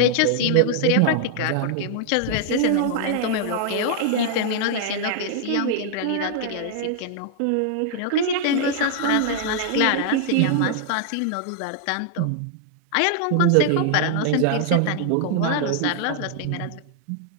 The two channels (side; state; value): both; different; correlation 0.00